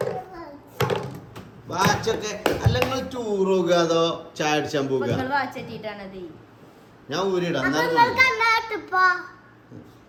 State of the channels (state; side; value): identical; both; correlation 1.00